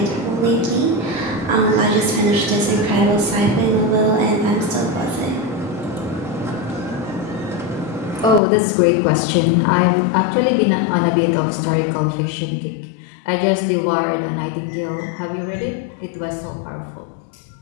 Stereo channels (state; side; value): drops out; right; at 8.4 s